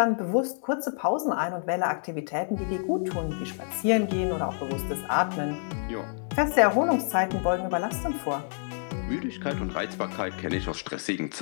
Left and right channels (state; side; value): silent; right; digital silence